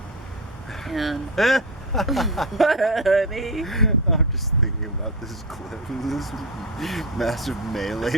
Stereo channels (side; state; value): both; normal; correlation 0.19